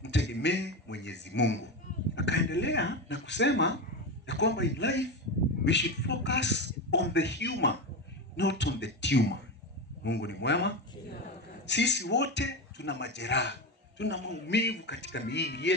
mtegemee Mwenyezi Mungu. Akaendelea na kusema ya kwamba in life we should focus on the humor, not on the tumor. Mungu ni mwema. Sisi wote tuna majeraha. Tuna maumivu katika miili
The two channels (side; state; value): both; normal; correlation 0.18